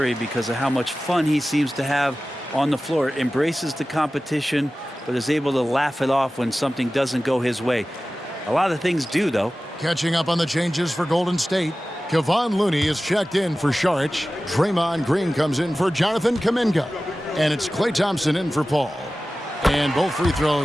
because of how much fun he seems to have on the floor. Embraces the competition, but is able to laugh it off when something doesn't go his way. A lot of things do, though. Catching up on the changes for Golden State, Kevon Looney is checked in for Saric. Draymond Green comes in for Jonathan Kuminga. And it's Klay Thompson in for Paul. And both free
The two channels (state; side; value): normal; both; correlation 0.96